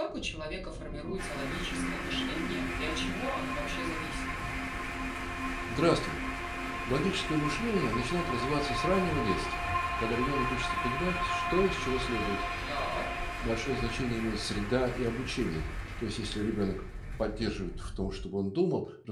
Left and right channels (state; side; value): identical; both; correlation 1.00